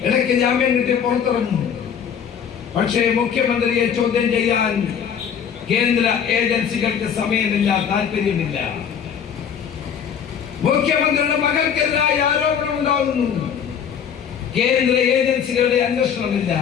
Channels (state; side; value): quieter; right; 7.8 dB